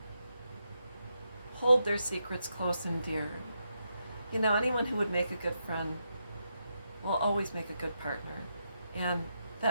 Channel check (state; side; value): inverted; both; correlation -0.83